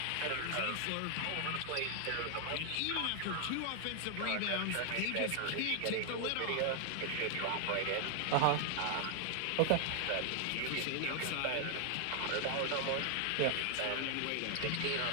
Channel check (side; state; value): both; different; correlation 0.00